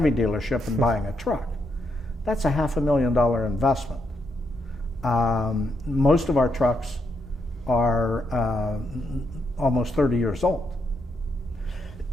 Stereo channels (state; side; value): normal; both; correlation 0.80